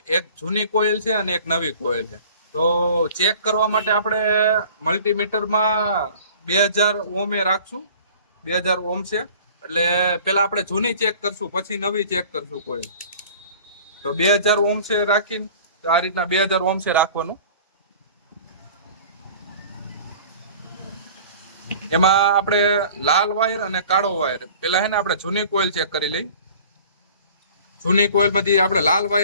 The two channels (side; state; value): both; inverted; correlation -0.46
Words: એક જૂની કોઇલ છે અને એક નવી કોઇલ છે. તો ચેક કરવા માટે આપણે મલ્ટીમીટરમાં 2000 ઓમ એ રાખશું. 2000 ઓમ છે એટલે પેલા આપણે જૂની ચેક કરશું, પછી નવી ચેક કરશું કોઇલ. તો 2000 ઓમ છે રાખીને આ રીતના 2000 ઓમ છે રાખવાનું. એમાં આપણે લાલ વાયર અને કાળો વાયર પેલા હે ને આપણે જૂની કોઇલ ચેક કરી લઈ. જૂની કોઇલ માંથી આપણે લાલ